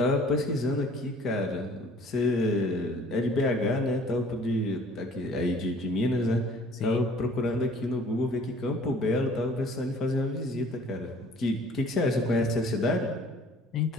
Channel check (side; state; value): both; normal; correlation 0.53